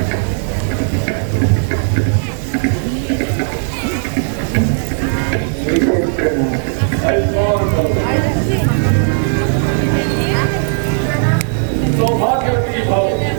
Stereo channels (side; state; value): left; silent; digital silence